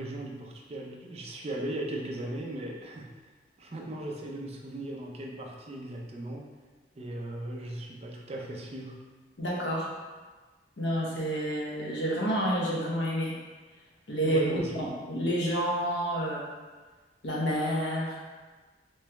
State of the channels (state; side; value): normal; both; correlation 0.42